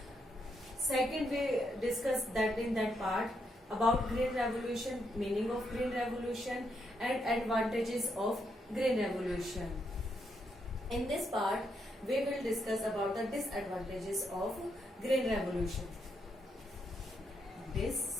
Second, we discussed that in that part about green revolution, meaning of green revolution and advantages of green revolution. In this part, we will discuss about the disadvantages of green revolution.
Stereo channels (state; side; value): normal; both; correlation 0.79